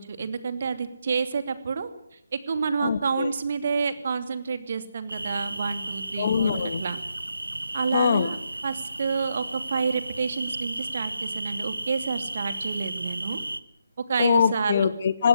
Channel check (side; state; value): both; inverted; correlation -0.79